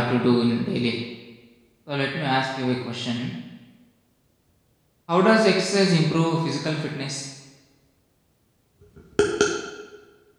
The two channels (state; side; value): identical; both; correlation 1.00